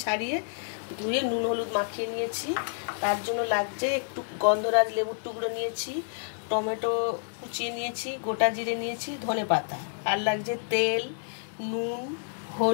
ছাড়িয়ে ধুয়ে নুন হলুদ মাখিয়ে নিয়েছি। তার জন্য লাগছে একটু গন্ধরাজ লেবুর টুকরো নিয়েছি, টমেটো কুচিয়ে নিয়েছি, গোটা জিরে নিয়েছি, ধনে পাতা, আর লাগছে তেল, নুন,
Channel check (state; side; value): silent; right; 59 dB below the other